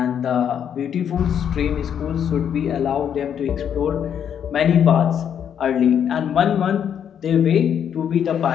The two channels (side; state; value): right; quieter; 8.7 dB